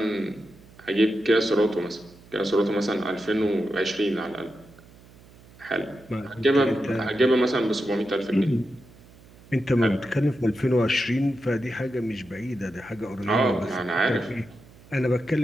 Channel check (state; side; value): noise; right; hum, 24 dB below the sound